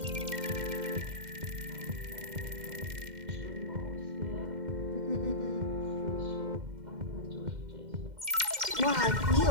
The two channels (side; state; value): left; late; 2.1 ms